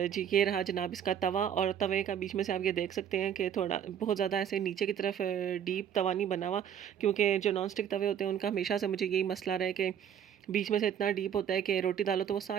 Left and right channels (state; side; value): quieter; left; 9.1 dB